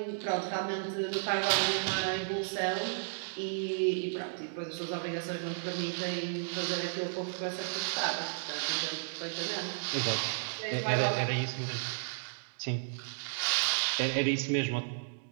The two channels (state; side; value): silent; left; digital silence